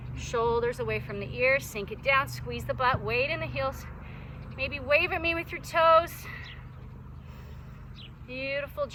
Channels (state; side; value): identical; both; correlation 1.00